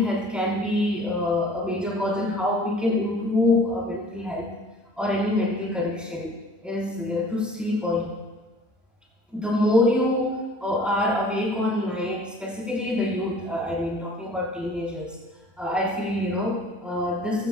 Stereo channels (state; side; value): normal; both; correlation 0.49